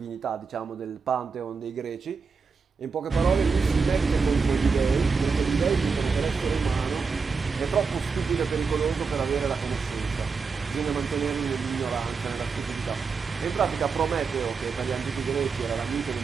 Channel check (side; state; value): left; quieter; 5.1 dB